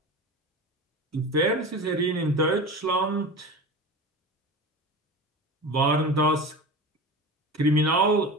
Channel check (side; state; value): both; normal; correlation 0.30